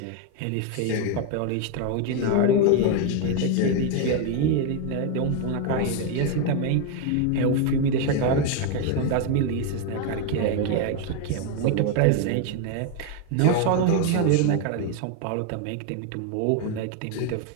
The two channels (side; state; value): both; different; correlation 0.01